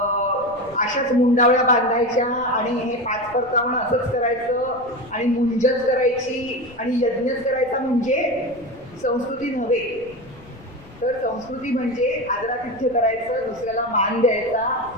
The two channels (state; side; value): noise; left; rumble, 23 dB below the sound